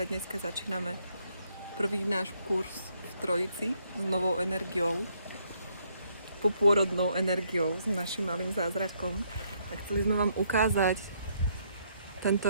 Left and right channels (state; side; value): inverted; both; correlation -0.71